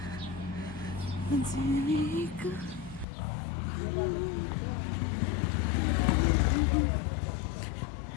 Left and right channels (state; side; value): drops out; right; at 3.1 s